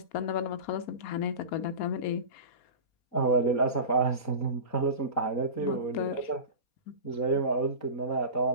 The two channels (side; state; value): right; late; 4.2 ms